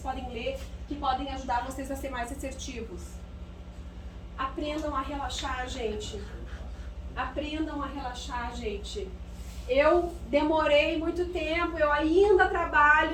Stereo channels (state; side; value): identical; both; correlation 1.00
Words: podem ler que podem ajudar vocês a ser mais assertivos. Aprendam a relaxar, gente. Aprendam a relaxar, gente. Eu demorei muito tempo, eu ainda